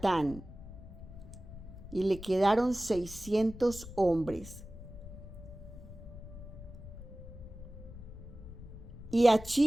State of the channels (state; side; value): noise; left; rumble, 13 dB below the sound